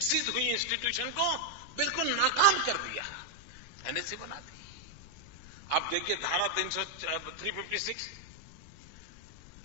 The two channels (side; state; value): left; noise; rumble, 18 dB below the sound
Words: हुई इंस्टीट्यूशन को बिल्कुल नाकाम कर दिया, एनएसी बना दी। आप देखिए धारा 356,